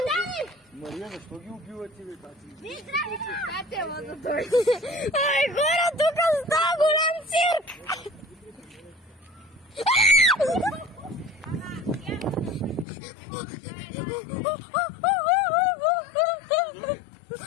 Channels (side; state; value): right; drops out; at 12.9 s